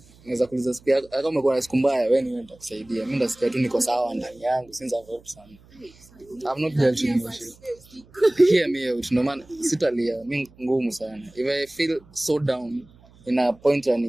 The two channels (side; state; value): right; noise; hum, 27 dB below the sound